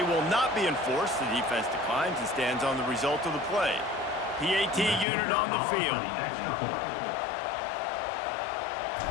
will not be enforced. The defense declines and stands on the result of the play. PAT unit on the field.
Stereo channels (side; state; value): right; drops out; at 5.1 s